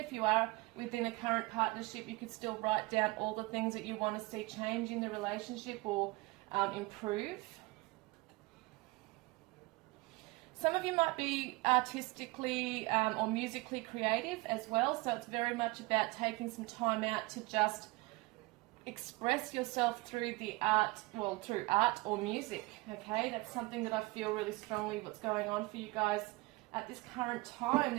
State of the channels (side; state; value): left; quieter; 23.0 dB